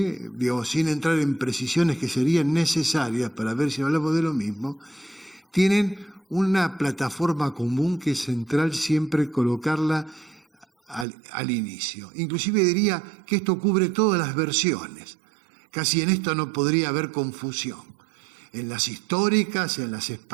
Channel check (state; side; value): drops out; left; at 11.1 s